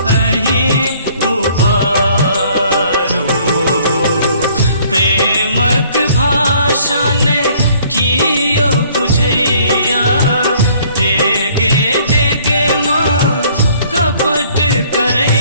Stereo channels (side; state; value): both; inverted; correlation -0.58